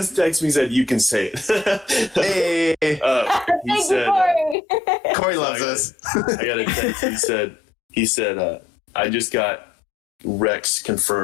texted me and said, "You can say it." Hey, he said, Corey loves us. I got a text. He said, "I just got Rex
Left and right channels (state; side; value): drops out; right; at 4.5 s